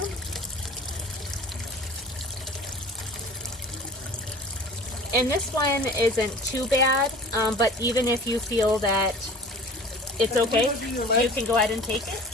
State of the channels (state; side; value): normal; both; correlation 0.43